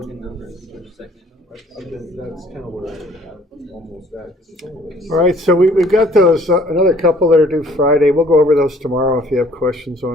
numbers or second numbers. That's kind of where I'm almost at. All right, so we've got those, another couple that are due Friday. We'll go over those tomorrow if you have questions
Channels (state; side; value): normal; both; correlation 0.57